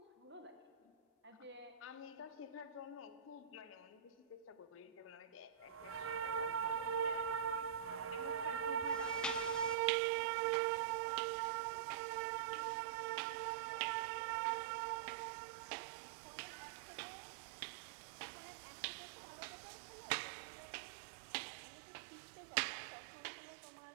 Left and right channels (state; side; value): drops out; left; at 9.8 s